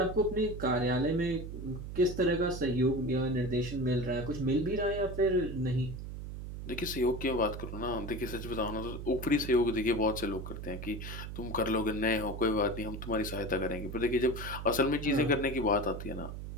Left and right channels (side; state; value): right; noise; hum, 8 dB below the sound